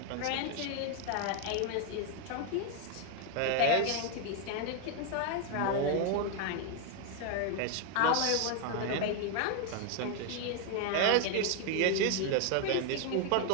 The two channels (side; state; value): both; different; correlation 0.00